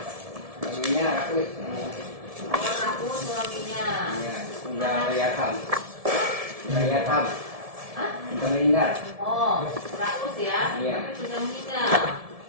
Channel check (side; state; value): left; late; 1.7 ms